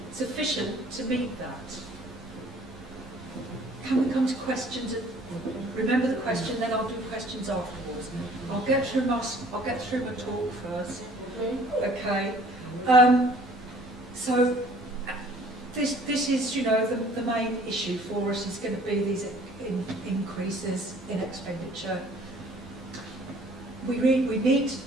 sufficient to meet that. Can we come to questions? Remember the question, then I'll do questions afterwards. I'll get through my talk first. Okay. So this is, you know, the main issue for us is going to be these increases in expenditure. We need to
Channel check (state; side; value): noise; right; hum, 25 dB below the sound